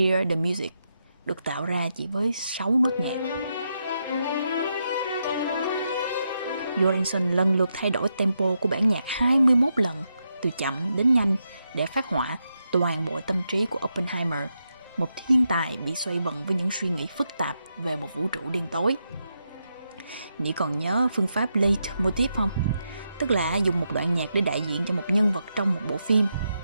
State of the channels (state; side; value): inverted; both; correlation -0.84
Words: the Music, được tạo ra chỉ với 6 nốt nhạc. Göransson lần lượt thay đổi tempo của bản nhạc 21 lần, từ chậm đến nhanh, để phát họa toàn bộ tâm trí của Oppenheimer, một thiên tài bị xoay vần với những suy nghĩ phức tạp về một vũ trụ đen tối. Nị còn nhớ phương pháp leitmotiv không? Tức là dùng một đoạn nhạc để đại diện cho một nhân vật trong một bộ phim.